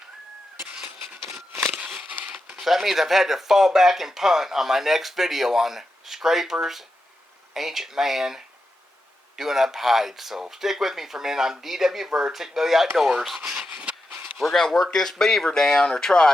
So that means I've had to fall back and punt on my next video on scrapers, ancient man, doing up hides. So stick with me for a minute. I'm D.W. Bird, Thick Belly Outdoors. We're going to work this beaver down, or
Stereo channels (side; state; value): both; normal; correlation 0.89